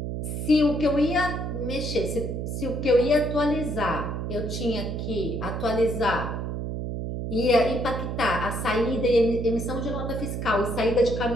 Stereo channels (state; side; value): noise; right; hum, 4 dB below the sound